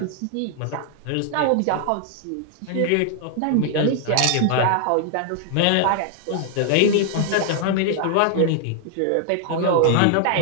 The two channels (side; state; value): both; different; correlation 0.00